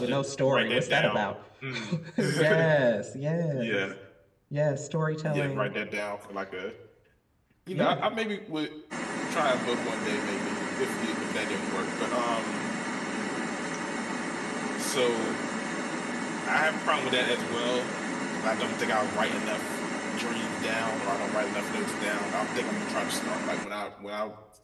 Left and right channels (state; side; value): identical; both; correlation 1.00